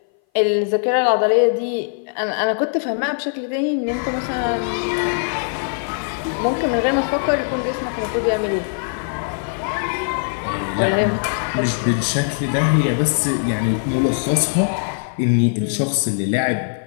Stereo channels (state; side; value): silent; right; 58 dB below the other